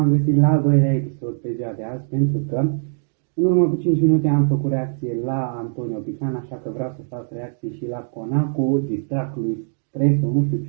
găsit la al doilea episod pe ziua de azi, pentru că în urmă cu 5 minute am făcut reacție la Antonio Pican, așa că vreau să fac reacție și la Conacu, distract lui Stresul, nu știu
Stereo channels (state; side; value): silent; left; digital silence